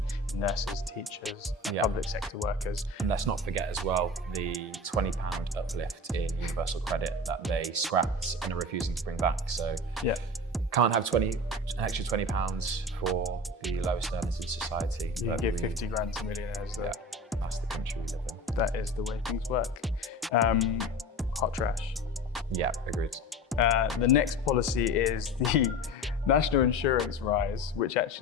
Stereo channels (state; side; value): normal; both; correlation 0.32